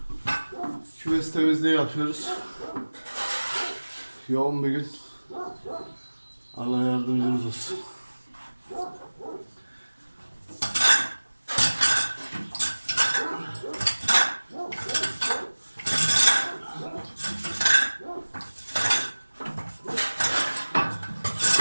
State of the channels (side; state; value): both; inverted; correlation -1.00